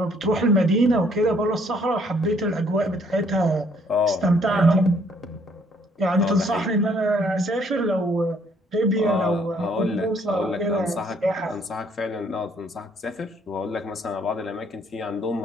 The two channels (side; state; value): both; normal; correlation 0.65